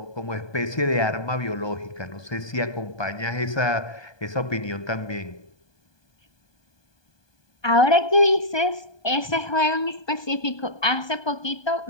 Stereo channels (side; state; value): right; late; 1.2 ms